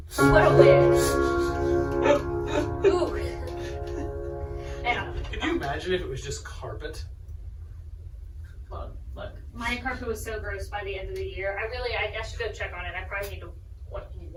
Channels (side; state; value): both; identical; correlation 1.00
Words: What a win. Ooh. Yeah. Can you imagine if it was just carpet? Look. My carpet was so gross by the end of the year. I should go check on it. I probably need to